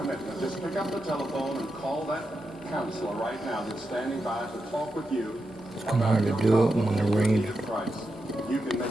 Just pick up the telephone and call that counselor right now that's standing by to talk with you about your problem with Jesus Christ. You can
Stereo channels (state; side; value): normal; both; correlation 0.87